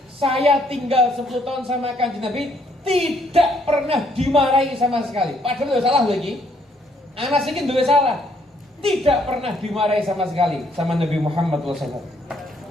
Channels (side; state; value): both; normal; correlation 0.68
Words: Saya tinggal 10 tahun sama Kanjeng Nabi, tidak pernah dimarahi sama sekali. Padahal salah lagi. Anas ini duwe salah. Tidak pernah dimarahi sama sekali sama Nabi Muhammad SAW.